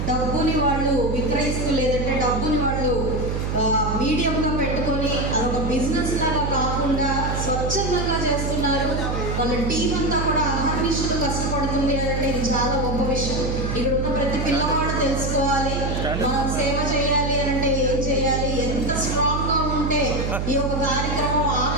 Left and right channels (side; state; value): right; noise; hum, 1 dB below the sound